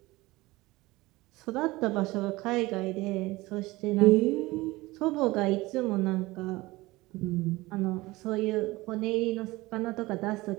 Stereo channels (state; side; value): quieter; left; 20.5 dB